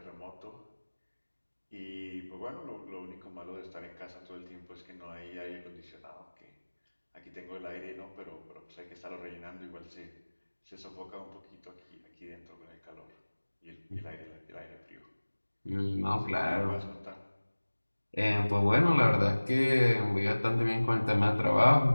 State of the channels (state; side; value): inverted; both; correlation -1.00